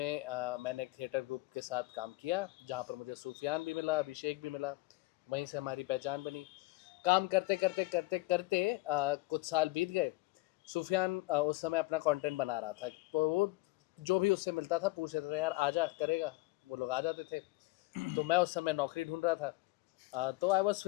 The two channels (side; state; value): right; quieter; 20.7 dB